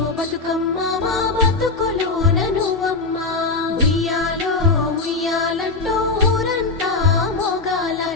బతుకమ్మ మా బతుకులోన నువ్వమ్మ ఉయ్యాలో ఉయ్యాలంటూ ఊరంతా మోగాల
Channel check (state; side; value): quieter; right; 3.6 dB